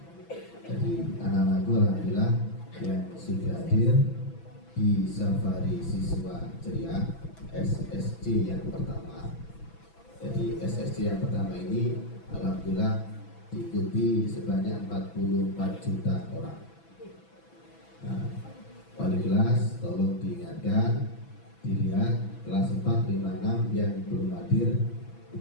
Jadi anak-anakku alhamdulillah yang sudah hadir di safari siswa ceria SSC yang pertama. Jadi SSC yang pertama ini alhamdulillah diikuti sebanyak 44 juta orang. Nah, wali kelas tolong diingatkan, dilihat kelas 4, 5, 6 yang belum hadir,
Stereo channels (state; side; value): late; right; 6.0 ms